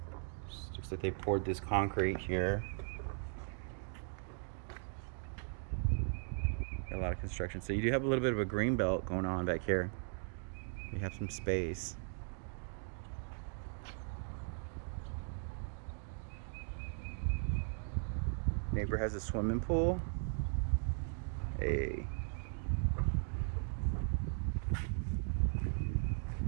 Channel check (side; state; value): left; silent; 52 dB below the other